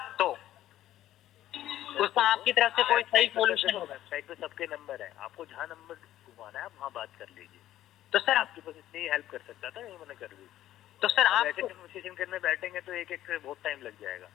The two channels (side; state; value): right; quieter; 13.3 dB